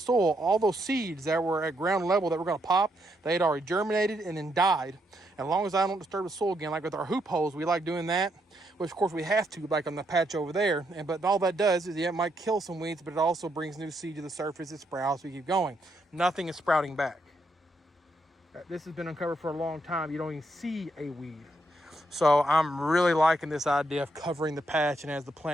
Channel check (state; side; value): normal; both; correlation 0.77